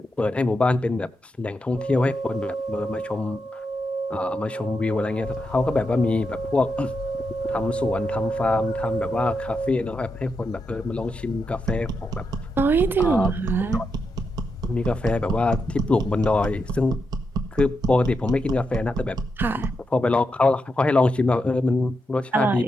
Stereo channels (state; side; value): normal; both; correlation 0.84